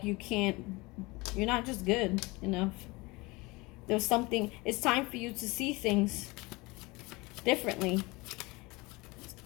you're not just good enough. There's something, it's time for you to see things differently.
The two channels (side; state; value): right; quieter; 23.8 dB